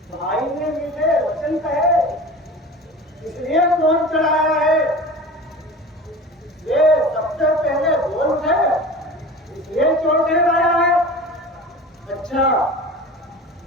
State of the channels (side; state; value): both; normal; correlation 0.36